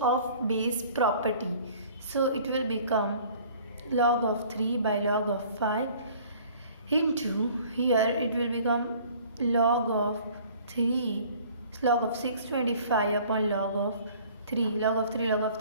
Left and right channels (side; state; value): both; inverted; correlation -0.52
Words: base property. So it will become log of 3 by log of 5 into, here it will become log of 3 log of 625 upon log of 3. Log of